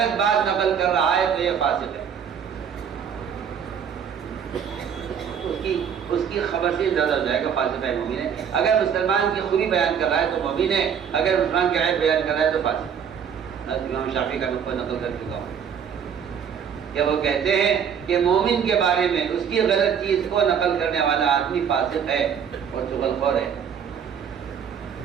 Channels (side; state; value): left; quieter; 7.8 dB